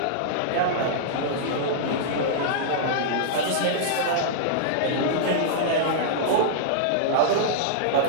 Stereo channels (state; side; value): different; both; correlation -0.02